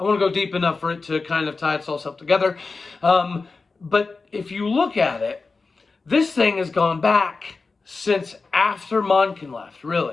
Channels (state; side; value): quieter; right; 4.1 dB